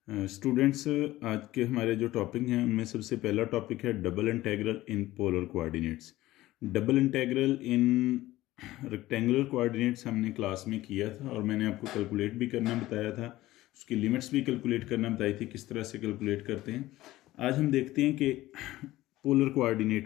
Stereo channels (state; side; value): quieter; right; 16.6 dB